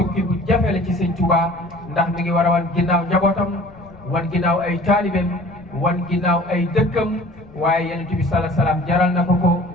bu jafe la ci Sëñ Tuubaa ndax mi ngi war a wan ginnaaw njabootam wan ginnaaw ay taalibeem wan ginnaaw ay dëkkam waaye Yonent bi sala salaam jaral na ko ko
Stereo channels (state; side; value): noise; left; rumble, 24 dB below the sound